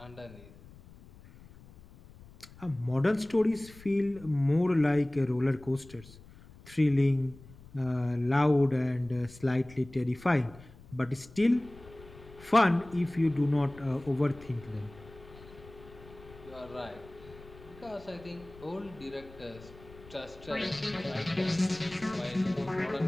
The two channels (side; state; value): left; noise; rumble, 20 dB below the sound